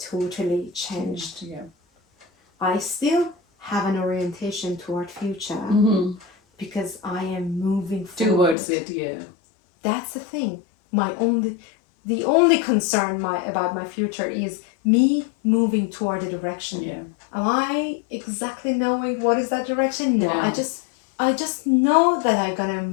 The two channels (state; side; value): drops out; right; at 8.6 s